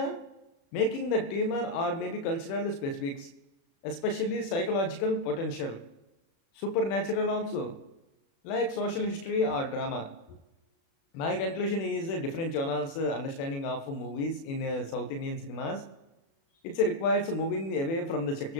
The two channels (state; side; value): late; right; 36 ms